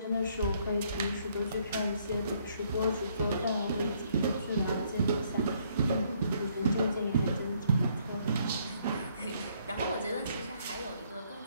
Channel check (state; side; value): inverted; both; correlation -0.68